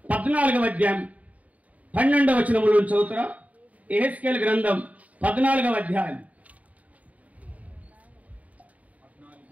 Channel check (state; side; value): late; left; 0.070 ms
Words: 14వ అధ్యాయం 12వ వచనముల నుంచి చదువుతారా? యెహెజ్కేలు గ్రంథం 14వ అధ్యాయం.